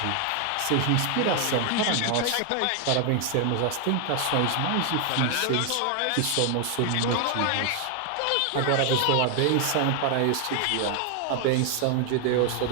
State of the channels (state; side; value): different; both; correlation 0.00